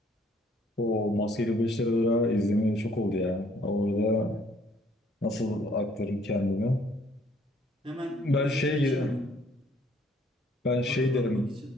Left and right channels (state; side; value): normal; both; correlation 0.62